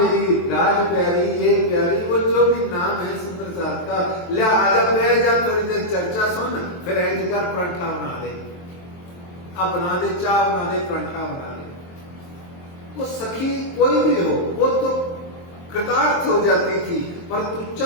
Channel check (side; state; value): right; late; 23 ms